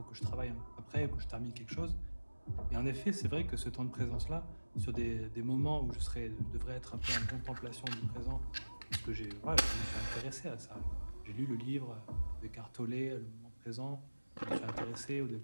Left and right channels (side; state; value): both; inverted; correlation -1.00